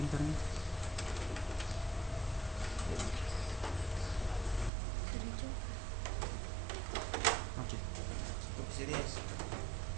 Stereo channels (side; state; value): left; drops out; at 4.7 s